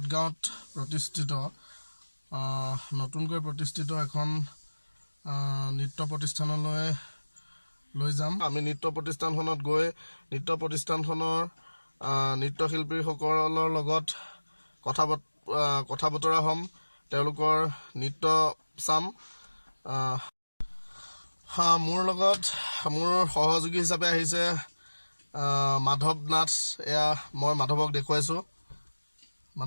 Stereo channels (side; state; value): both; inverted; correlation -1.00